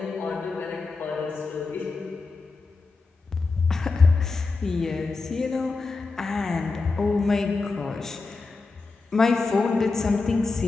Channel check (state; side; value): quieter; right; 4.0 dB